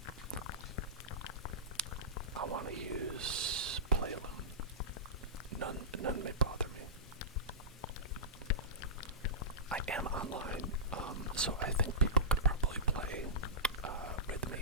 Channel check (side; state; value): both; normal; correlation -0.18